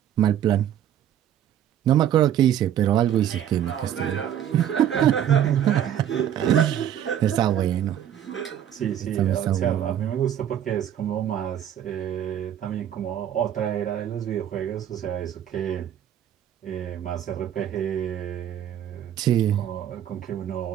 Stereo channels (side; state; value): left; quieter; 10.3 dB